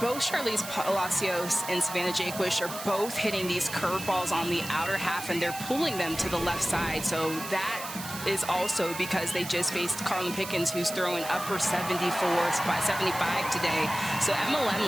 Charlize Palacios and Savannah Jaquish are both hitting these curveballs on the outer half, and they're pulling them to the left side. So that is also because they just faced Carlin Pickens, who's throwing upper 74, 75 today. So Emma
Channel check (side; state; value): right; noise; hiss, 10 dB below the sound